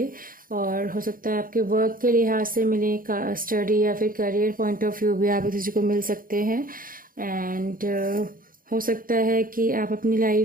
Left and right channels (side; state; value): left; late; 0.41 ms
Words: और हो सकता है आपके वर्क के लिहाज से मिले, स्टडी या फिर करियर पॉइंट ऑफ व्यू भी आप एक दूसरे को मिल सकते हैं। एंड हो सकता है कि आप अपनी